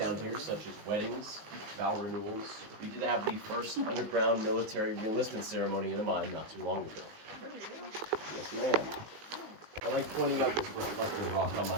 here such as weddings, vow renewals. We did have the first underground military reenlistment ceremony in a mine not too long ago. Yes, ma'am. I like pointing out this reflecting rock on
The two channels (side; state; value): left; late; 19 ms